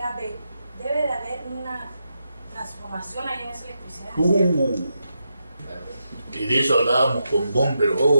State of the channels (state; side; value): inverted; both; correlation -0.85